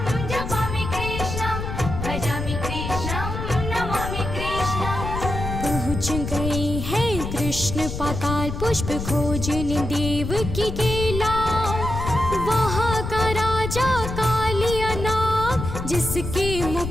विशाल पुष्प खोजने देव की केला। वहाँ का राजा कालिया नाग, जिसके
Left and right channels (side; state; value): left; noise; rumble, 5 dB below the sound